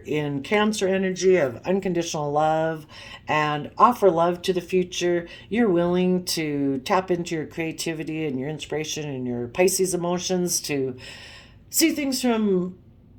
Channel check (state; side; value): identical; both; correlation 1.00